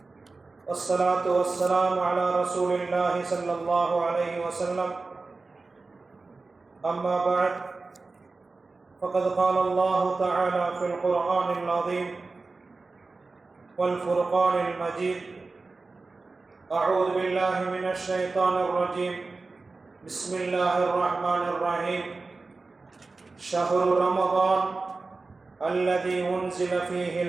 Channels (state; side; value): quieter; left; 3.8 dB